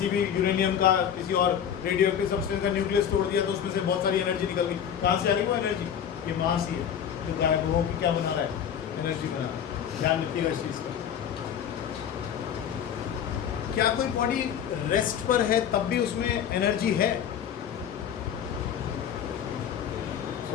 भी यूरेनियम का, किसी और रेडियो एक्टिव सब्सटेंस का न्यूक्लियस तोड़ दिया तो उसमें से बहुत सारी एनर्जी निकल गई। कहाँ से आ गई वो एनर्जी, ये मास ही है जो गायब हो कि क्या बना रहा है, एनर्जी बना रहा है। ध्यान रखिएगा इस चीज़ का। क्या कोई बॉडी रेस्ट पर है तब भी उसमें एनर्जी है,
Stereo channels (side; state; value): right; quieter; 8.8 dB